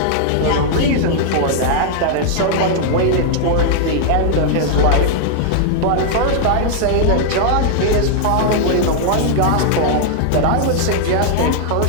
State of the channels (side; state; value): both; different; correlation -0.01